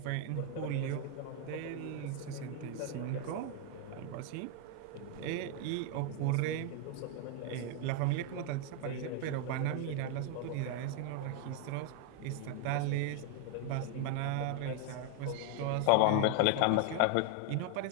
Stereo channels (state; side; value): different; both; correlation 0.00